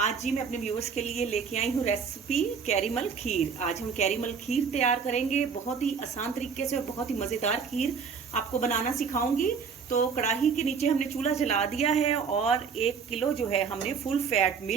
जी मैं अपने व्यूवर्स के लिए लेके आई हूँ रेसिपी कैरीमल खीर। आज हम कैरीमल खीर तैयार करेंगे, बहुत ही आसान तरीके से और बहुत ही मज़ेदार खीर आपको बनाना सिखाऊंगी। तो कढ़ाई के नीचे हमने चूल्हा जला दिया है और 1 किलो जो है हमने फुल फैट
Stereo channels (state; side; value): quieter; left; 6.0 dB